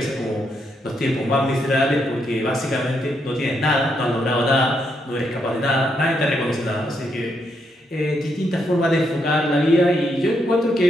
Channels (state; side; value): normal; both; correlation 0.78